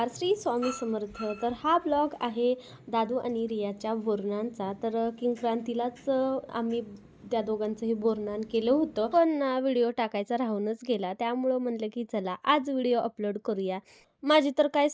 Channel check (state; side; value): identical; both; correlation 1.00